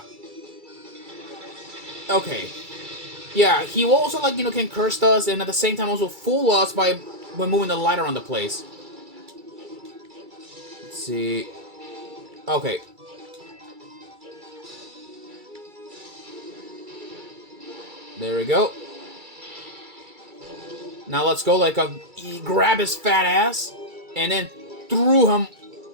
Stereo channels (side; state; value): left; late; 2.3 ms